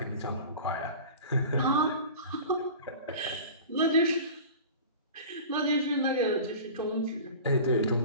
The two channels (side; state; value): both; inverted; correlation -0.37